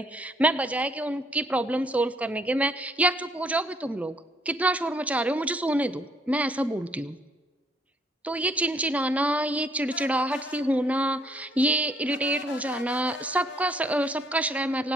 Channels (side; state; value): both; normal; correlation 0.66